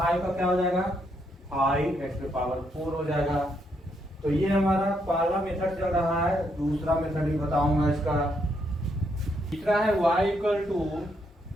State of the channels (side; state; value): both; normal; correlation 0.76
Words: का क्या हो जाएगा? 5x की पावर 4 हो जाएगा। तो ये हमारा पहला मेथड चल रहा है, दूसरा मेथड भी बताऊंगा इसका। तीसरा है y equal to